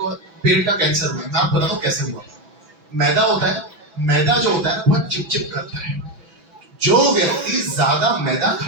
पेट का कैंसर हुआ, मैं आपको बताता हूं कैसे हुआ। मैदा होता है, मैदा जो होता है ना बहुत चिपचिप करता है। जो व्यक्ति ज्यादा मैदा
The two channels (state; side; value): late; left; 6.0 ms